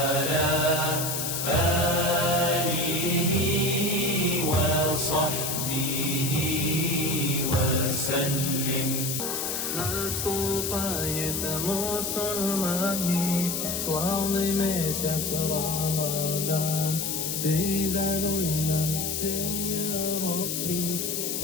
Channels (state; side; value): noise; left; hiss, 1 dB below the sound